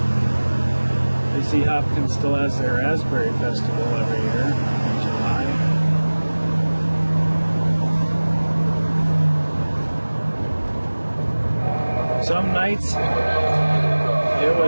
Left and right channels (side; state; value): both; inverted; correlation -1.00